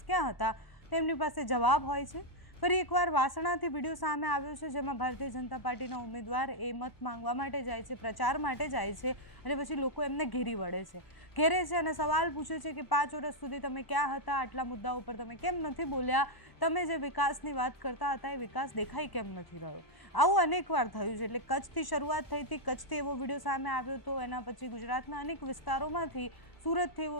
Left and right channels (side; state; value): right; late; 1.0 ms